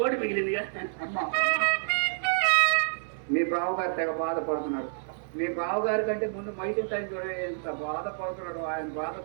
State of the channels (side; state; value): left; silent; 59 dB below the other